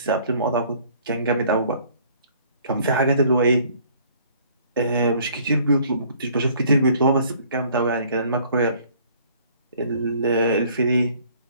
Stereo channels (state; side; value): inverted; both; correlation -0.57